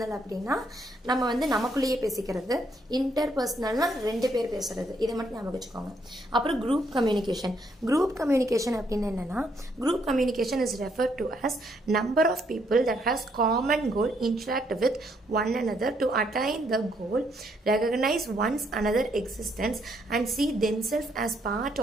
அப்படின்னா நம்ம வந்து நமக்குள்ளேயே பேசிக்கிறது. இன்டர் பர்சனல்னா 2 பேர் பேசுறது. இதை மட்டும் ஞாபகம் வச்சுக்கோங்க. அப்புறம் குரூப் கம்யூனிகேஷன். குரூப் கம்யூனிகேஷன் அப்படின்னு என்னன்னா, group communication is referred to as number of people that has common goal interact with one another to attain the goal, recognize one's another existence and see themselves as part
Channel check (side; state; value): both; normal; correlation 0.72